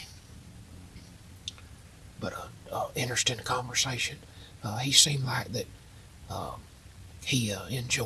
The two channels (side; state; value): both; identical; correlation 1.00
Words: But interesting conversation. He seemed like that he